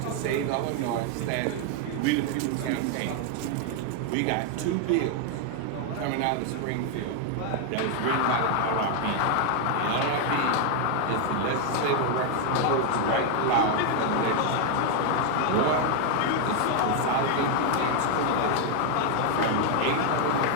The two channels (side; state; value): both; different; correlation 0.00